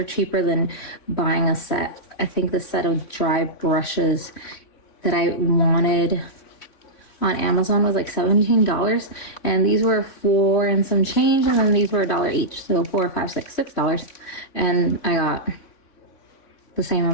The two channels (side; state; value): right; late; 3.5 ms